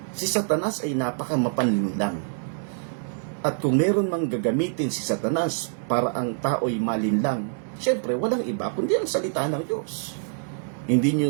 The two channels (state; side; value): silent; left; digital silence